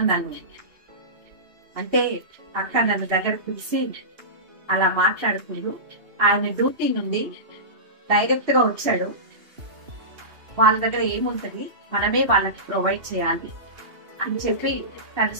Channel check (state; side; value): late; left; 2.7 ms